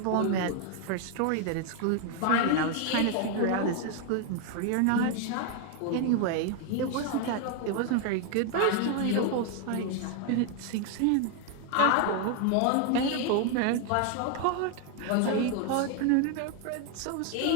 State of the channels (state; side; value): different; both; correlation 0.00